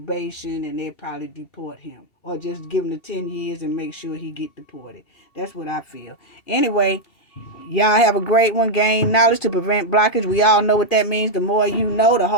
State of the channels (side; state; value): right; late; 2.7 ms